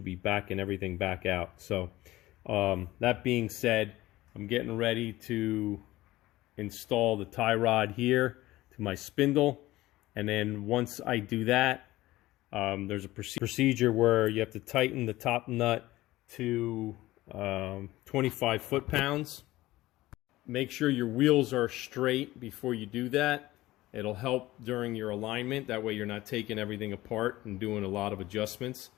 be backing everything back out. So that being said, I'm getting ready to install the tie rod here to my spindle, and then once I do that, there's a procedure where you have to tighten the top nut to 25 foot-pounds. Make sure your wheels are straight before you do that. It'll help during your alignment. That way you're not taking everything apart and doing a lot of adjustments.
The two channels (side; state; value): right; quieter; 17.4 dB